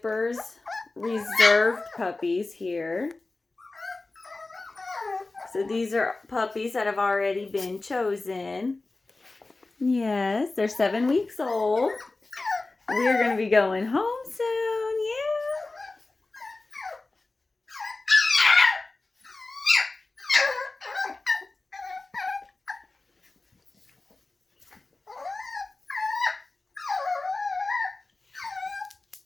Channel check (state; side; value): quieter; right; 3.3 dB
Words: reserved puppies here. So these are puppies that have already been chosen. Yes, they're 7 weeks old. We're going to be going home soon. Yeah.